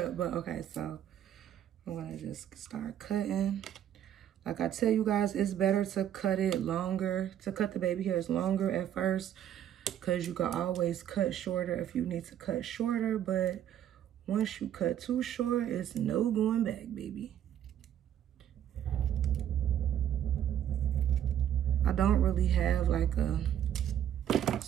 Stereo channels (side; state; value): left; quieter; 10.4 dB